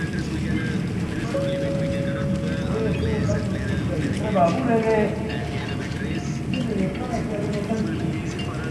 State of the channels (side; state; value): both; identical; correlation 1.00